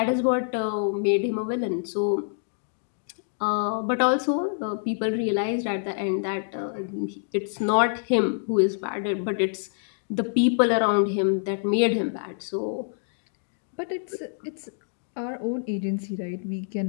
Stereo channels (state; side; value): silent; right; digital silence